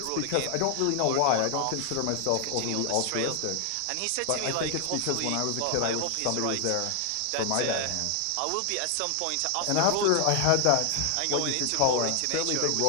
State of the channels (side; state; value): both; different; correlation 0.00